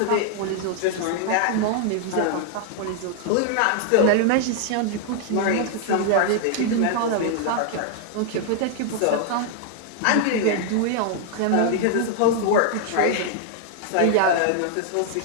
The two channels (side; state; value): both; different; correlation -0.01